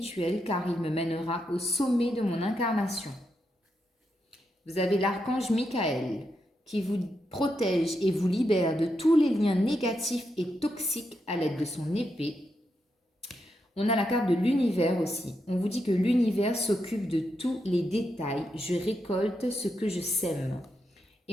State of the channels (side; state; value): both; normal; correlation 0.83